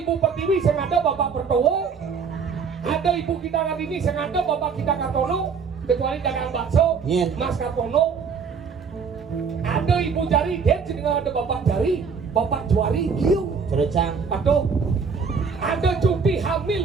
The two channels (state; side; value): quieter; left; 5.8 dB